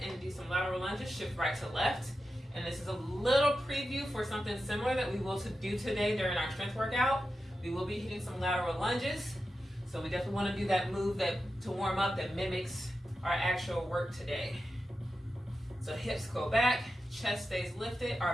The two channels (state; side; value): normal; both; correlation 0.91